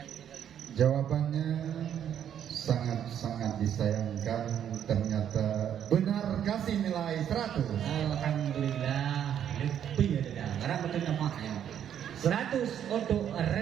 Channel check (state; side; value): quieter; left; 9.5 dB